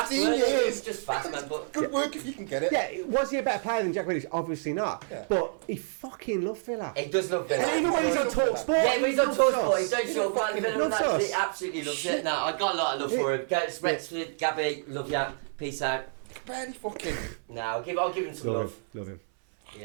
years. Just fast, man. But good work if you can get it. Yeah, was he a better player than Jack Grealish? Obviously not. Yeah. But he fucking loved Villa. He does love Villa. And even when he's on Talk Sport. Yeah, when he's on Talk Sport, he don't show up. He absolutely loves it. Nah, I got a lot of love for him. Rexford, Gabby, love ya. Peace out. Barely fucking. Nah, I'll give him some love. Love him.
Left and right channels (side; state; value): left; silent; 57 dB below the other